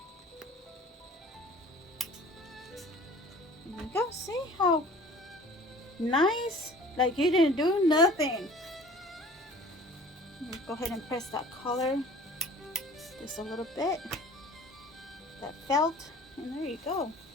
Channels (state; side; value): normal; both; correlation 0.47